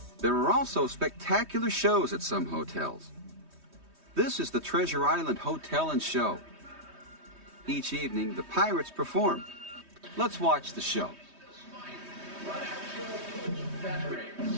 There are also spectacular shows at some hotels. This is the Treasure Island Hotel and Show. Each evening, the pirates perform. Let's watch the show. We'll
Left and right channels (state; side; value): late; left; 3.2 ms